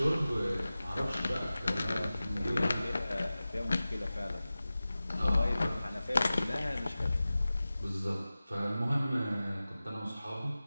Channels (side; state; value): both; inverted; correlation -0.96